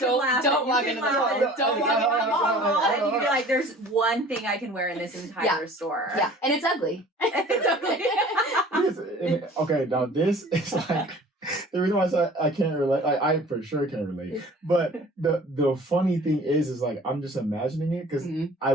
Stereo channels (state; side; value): normal; both; correlation 0.47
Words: walk into the mall. Don't walk into the mall. And you can be there's one thing I can wear in this entire store. Yeah. And it's ugly. It's ugly. Okay, now this is the reason why I say I can't relate, I for sure can't relate. But the funny thing is I'm just imagining it because I